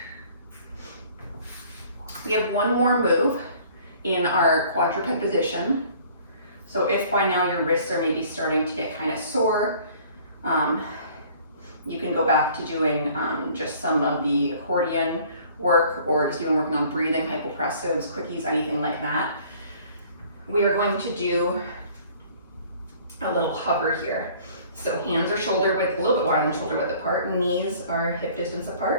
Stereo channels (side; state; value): both; inverted; correlation -0.53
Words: We have one more move in our quadruped position. So if by now your wrists are maybe starting to get kind of sore, you can go back to doing just some of the accordion work, or just even working on breathing, hypopressives, quickies, anything like that. We are going to do a little hover here. So hands are shoulder width, a little bit wider than shoulder width apart, knees are hip distance